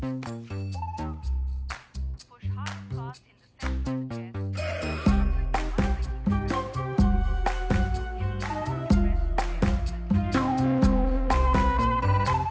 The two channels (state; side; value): identical; both; correlation 1.00